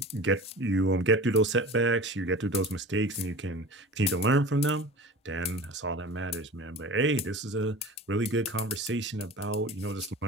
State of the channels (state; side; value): normal; both; correlation 0.37